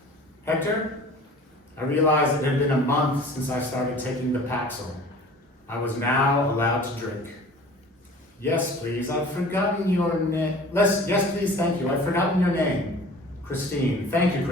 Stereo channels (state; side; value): normal; both; correlation 0.44